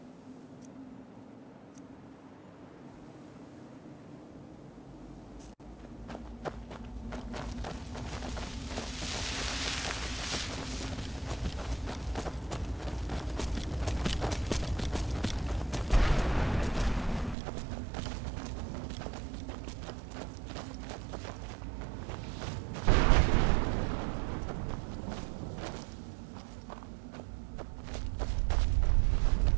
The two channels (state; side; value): drops out; left; at 17.4 s